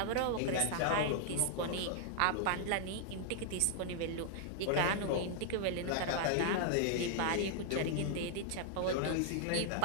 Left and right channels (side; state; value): both; different; correlation 0.00